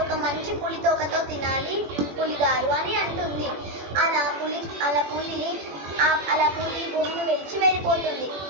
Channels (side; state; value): left; late; 21 ms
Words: ఒక మంచి పులి తోకతో తినాలి పులి గారు అని అంటుంది. అలా పులి గుహను విడిచి వెళ్ళిపోతుంది.